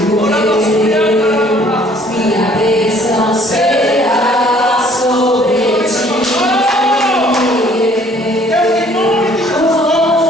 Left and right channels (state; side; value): normal; both; correlation 0.58